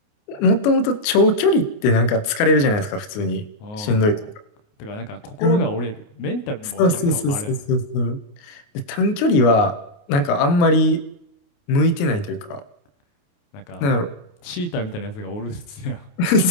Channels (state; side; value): late; right; 29 ms